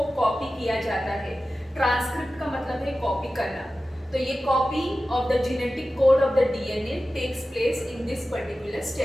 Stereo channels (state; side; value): normal; both; correlation 0.94